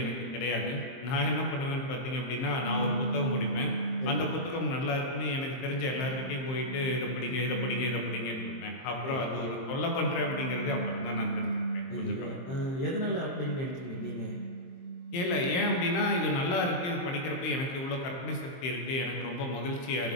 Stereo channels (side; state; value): right; late; 23 ms